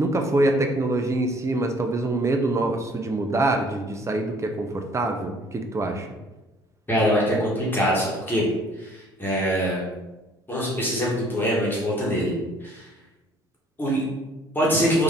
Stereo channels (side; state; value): both; normal; correlation 0.58